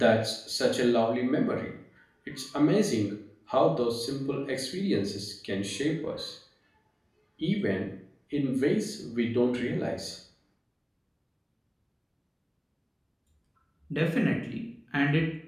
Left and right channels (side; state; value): both; identical; correlation 1.00